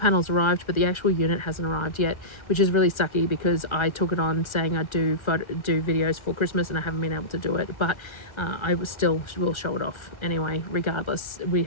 arrived, but the actual unit hasn't arrived yet, which is really sucky because I took it on saying I'd do videos for Christmas, and I haven't been able to do it, but I will show it off anyway. Regardless, we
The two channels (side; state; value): right; late; 1.4 ms